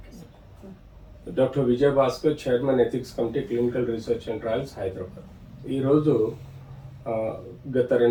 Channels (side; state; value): both; identical; correlation 1.00